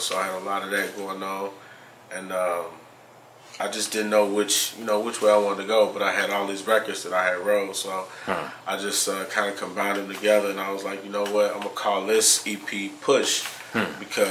I had a lot of that going on, and I just didn't know which way I wanted to go, but I had all these records that I had wrote, so I just kind of combined them together, and I was like, you know what, I'm gonna call this EP Push,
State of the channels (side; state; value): both; identical; correlation 1.00